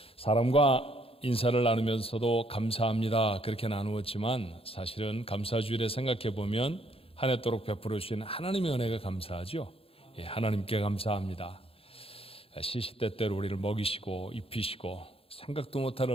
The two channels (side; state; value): right; late; 0.27 ms